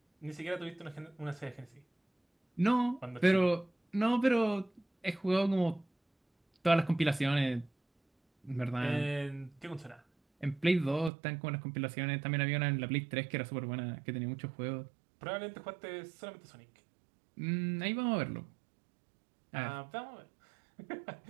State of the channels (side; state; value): left; drops out; at 11.1 s